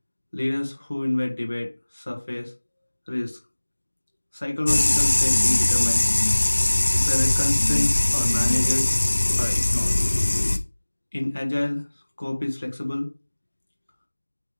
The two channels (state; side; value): inverted; both; correlation -1.00